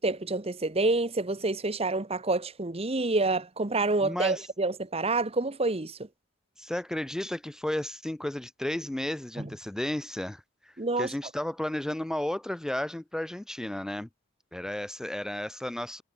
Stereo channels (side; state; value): both; normal; correlation 0.48